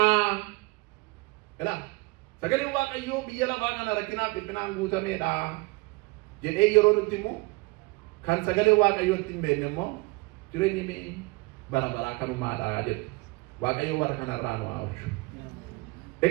Sagaleen Waaqayyoo biyya lafaa kana rakkinaaf dhiphinaan guutameedha jedhee yeroo nutti himu kan sagalee Waaqayyootti hin beekne immoo jireenyi bara baraa kanumaadha jedhu. Waaqayyo warra kanarraa nu haa oolchu.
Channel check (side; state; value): left; quieter; 25.5 dB